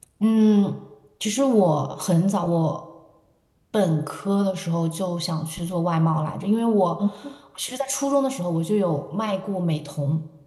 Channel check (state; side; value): identical; both; correlation 1.00